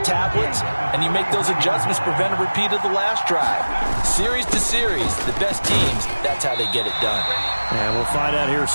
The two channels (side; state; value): both; inverted; correlation -1.00